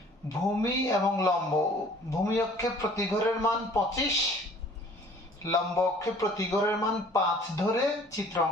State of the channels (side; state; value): both; normal; correlation 0.52